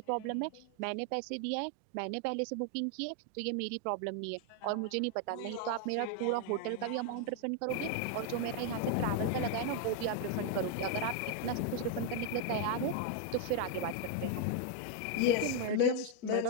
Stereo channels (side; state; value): both; different; correlation 0.00